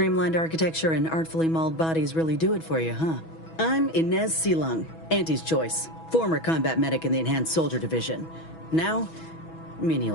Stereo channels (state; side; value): late; right; 6.1 ms